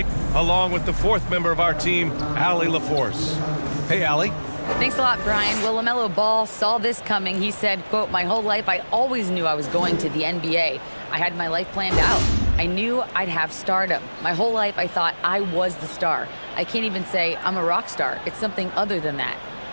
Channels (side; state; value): both; inverted; correlation -1.00